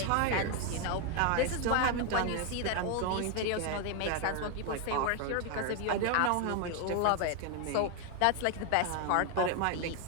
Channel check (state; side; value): different; both; correlation 0.01